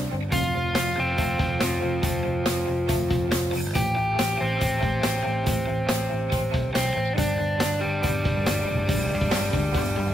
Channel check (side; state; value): both; normal; correlation 0.84